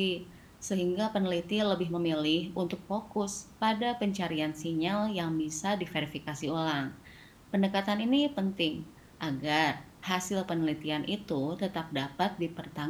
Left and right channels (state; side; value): identical; both; correlation 1.00